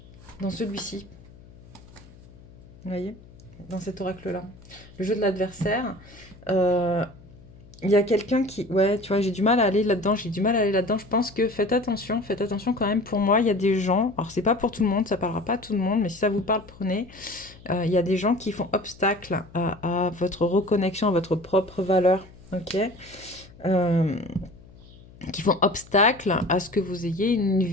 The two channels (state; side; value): noise; left; hum, 22 dB below the sound